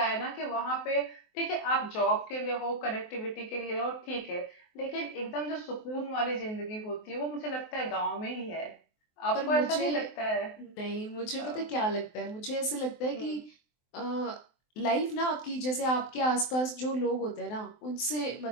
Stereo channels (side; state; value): right; late; 23 ms